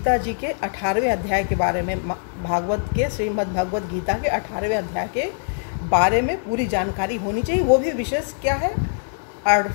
जी के 18वें अध्याय के बारे में, भागवत के, श्रीमद् भगवत गीता के 18वें अध्याय के बारे में पूरी जानकारी होनी चाहिए। वो भी विशेष क्या है,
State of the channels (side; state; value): right; silent; digital silence